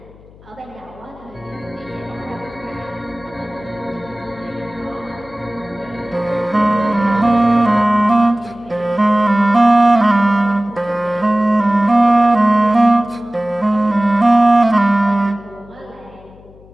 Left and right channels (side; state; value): left; noise; hum, 24 dB below the sound